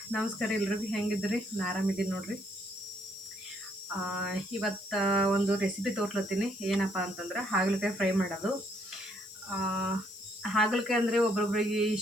ನಮಸ್ಕಾರ. ಎಲ್ರಿಗೂ ಹೆಂಗಿದ್ರಿ? ನಾನು ಆರಾಮಿದ್ದೀನಿ ನೋಡ್ರಿ. ಇವತ್ತು ಒಂದು ರೆಸಿಪಿ ತೋರ್ಲತ್ತೀನಿ. ಏನಪ್ಪ ಅಂತಂದ್ರೆ ಹಾಗಲಕಾಯಿ ಫ್ರೈ ಮಾಡೋದು. ಹಾಗಲಕಾಯಿ ಅಂದರೆ ಒಬ್ರೊಬ್ರಿಗೆ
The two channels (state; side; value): noise; left; hiss, 20 dB below the sound